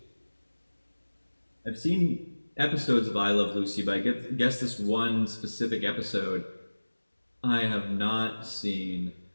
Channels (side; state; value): both; inverted; correlation -1.00